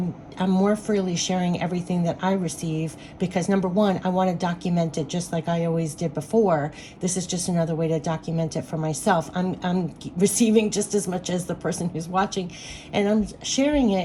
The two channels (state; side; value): identical; both; correlation 1.00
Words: more freely sharing everything that I receive because, number one, I want to document it just like I always did before. This is just another way to document it for myself. I'm receiving just as much as the person who's watching, and I'm sharing